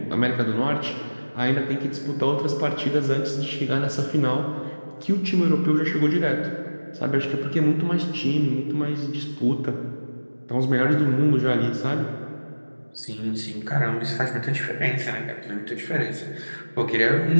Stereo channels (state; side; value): inverted; both; correlation -1.00